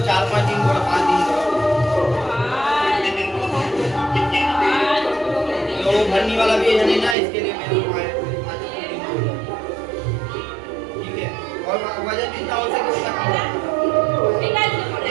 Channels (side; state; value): left; drops out; at 7.2 s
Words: भरने वाला भी है नहीं ना, इसके लिए मेरे को ठीक है। और वजन कितना हो सके उसका कम